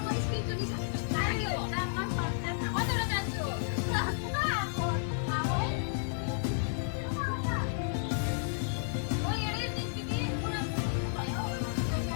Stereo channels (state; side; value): silent; right; digital silence